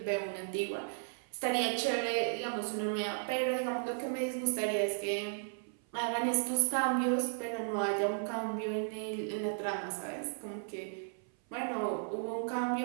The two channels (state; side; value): silent; left; 55 dB below the other